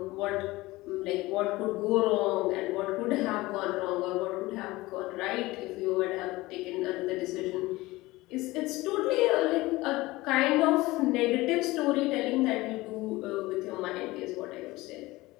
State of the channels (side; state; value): right; quieter; 19.8 dB